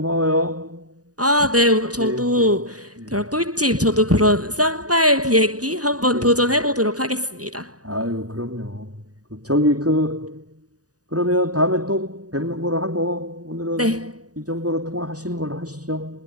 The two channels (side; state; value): left; late; 0.67 ms